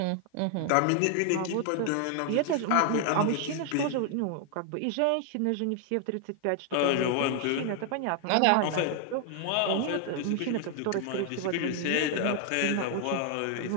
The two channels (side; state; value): both; different; correlation 0.00